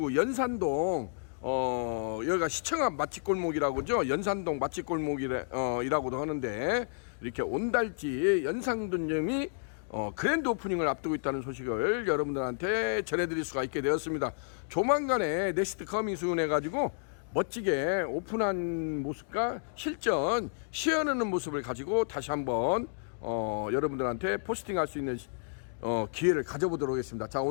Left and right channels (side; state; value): right; silent; digital silence